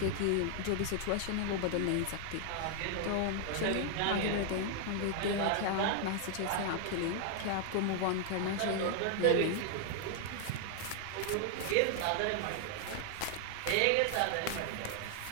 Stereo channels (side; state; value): both; different; correlation 0.00